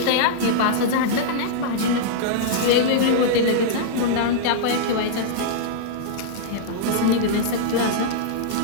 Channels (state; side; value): different; both; correlation -0.02